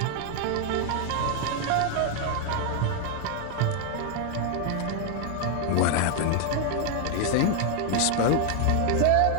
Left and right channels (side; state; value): both; different; correlation 0.00